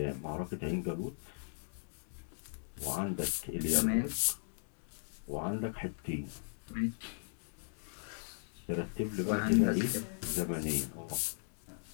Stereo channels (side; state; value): right; silent; digital silence